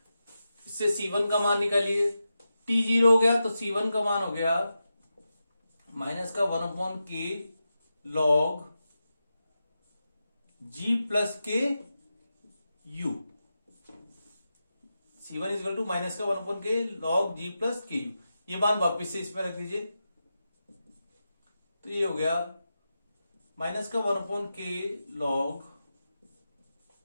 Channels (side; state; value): both; inverted; correlation -0.90